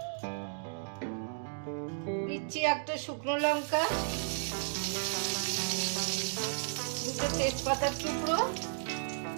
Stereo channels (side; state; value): left; silent; digital silence